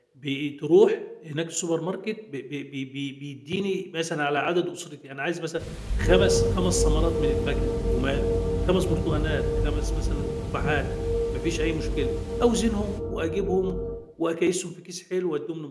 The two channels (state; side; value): identical; both; correlation 1.00